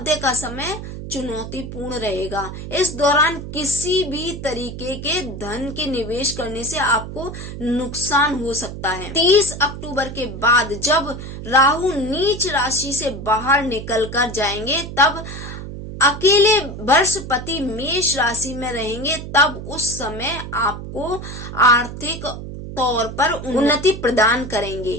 का समय चुनौतीपूर्ण रहेगा। इस दौरान किसी भी तरीके के धन के निवेश करने से आपको नुकसान हो सकता है। 30 अक्टूबर के बाद जब राहु नीच राशि से बाहर निकल कर जाएंगे तब अकेले बृहस्पति मेष राशि में रहेंगे, तब उस समय आपको आर्थिक तौर पर उन्नति प्रदान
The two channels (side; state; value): right; noise; hum, 9 dB below the sound